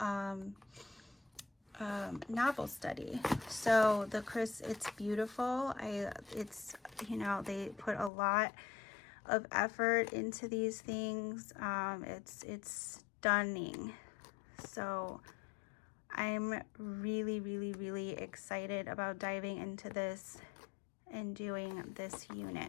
novel study. So it's beautiful. It's, you know, they put a lot of effort into these things. It's stunning. So I'm really, really, really excited about diving into this and doing this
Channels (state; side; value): drops out; right; at 8.1 s